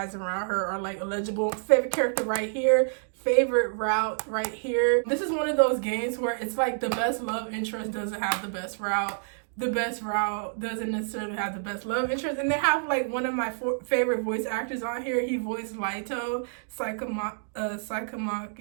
around her are like illegible. Favorite character right here, favorite route right here. This is one of those games where it's like the best love interest doesn't have the best route. The best route doesn't necessarily have the best love interest. And they have like one of my favorite voice actors on here. He voiced Laito Sakamaki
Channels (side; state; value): left; silent; digital silence